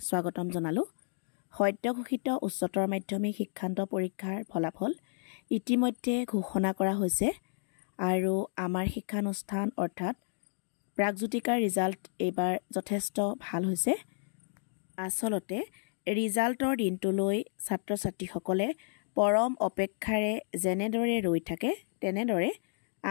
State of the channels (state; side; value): silent; right; digital silence